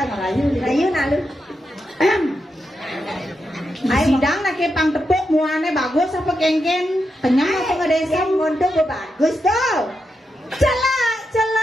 rayu nak lu. Sidang nak ke pang tepuk muane bagus apa kengken kenyang apa ngadesem. Monto bagus tu. Celak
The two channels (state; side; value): normal; both; correlation 0.86